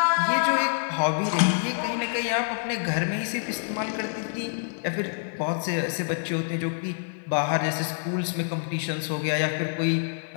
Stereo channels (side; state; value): right; silent; digital silence